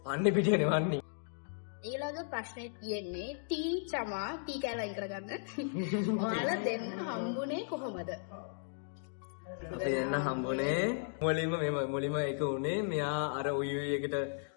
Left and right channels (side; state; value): right; silent; digital silence